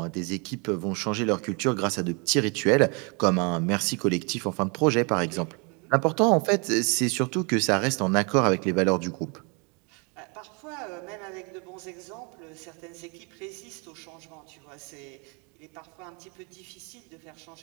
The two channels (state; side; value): quieter; left; 32.7 dB